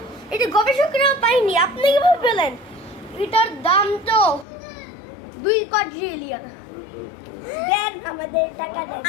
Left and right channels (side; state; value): right; drops out; at 4.5 s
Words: এটা গবেষকরা পায়নি, আপনি কিভাবে পেলেন? এটার দাম তো 2 কোয়াড্রিলিয়ন। দেন আমাদের টাকা দেন।